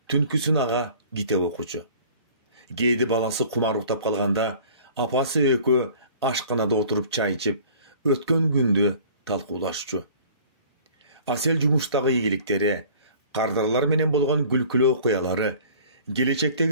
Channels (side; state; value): both; inverted; correlation -0.48